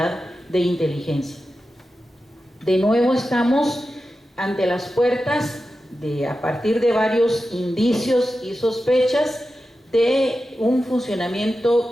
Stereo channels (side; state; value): both; normal; correlation 0.92